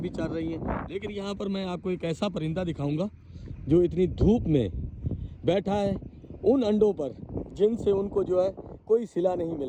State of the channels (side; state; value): both; identical; correlation 1.00